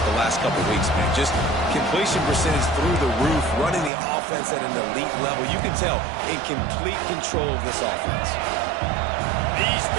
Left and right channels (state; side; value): drops out; left; at 3.9 s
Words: the last couple weeks, man. Just completion percentage through the roof, running the offense at an elite level. You can tell in complete control of this offense. These